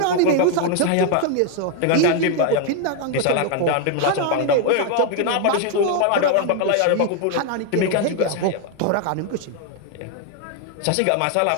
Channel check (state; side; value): different; both; correlation 0.01